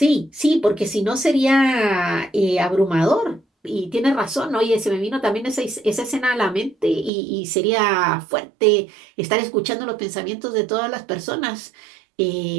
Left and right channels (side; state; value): left; drops out; at 7.1 s